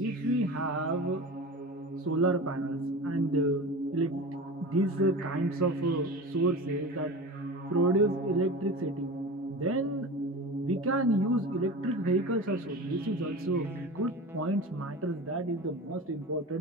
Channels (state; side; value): normal; both; correlation 0.31